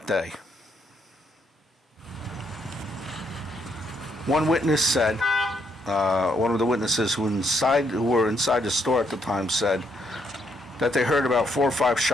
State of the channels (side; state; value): both; normal; correlation 0.74